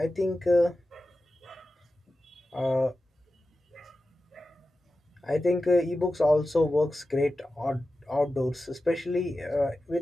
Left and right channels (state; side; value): normal; both; correlation 0.93